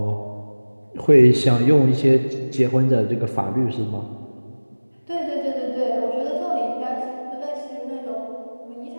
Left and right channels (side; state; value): both; inverted; correlation -1.00